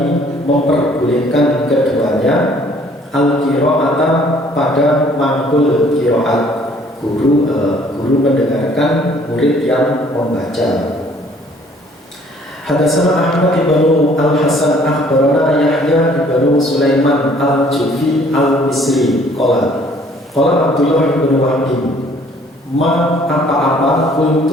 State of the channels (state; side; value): normal; both; correlation 0.58